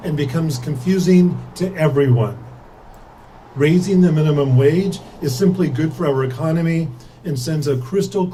and becomes confusing to everyone. Raising the minimum wage is simply good for our economy and sends a crystal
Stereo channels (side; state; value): both; identical; correlation 1.00